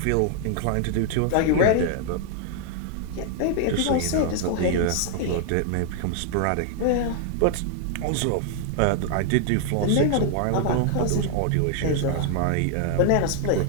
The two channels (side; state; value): both; different; correlation 0.00